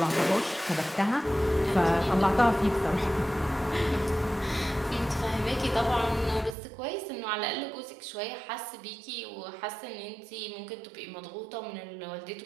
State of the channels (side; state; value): left; drops out; at 6.6 s